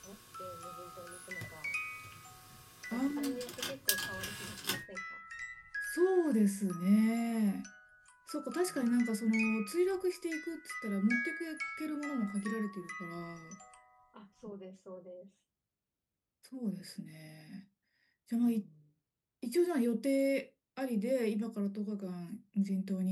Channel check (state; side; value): identical; both; correlation 1.00